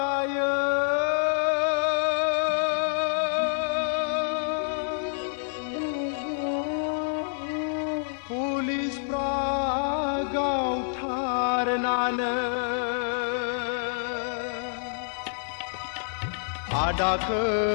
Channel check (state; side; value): silent; right; digital silence